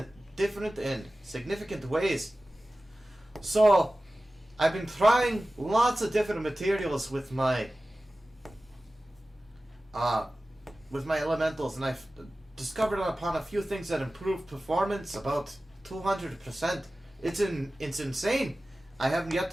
different and significant ways. So, I've been trying lots of different materials with my elementals, and I've discovered upon a few things that improve performance about 200%. It's insane. I haven't yet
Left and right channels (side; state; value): both; normal; correlation 0.96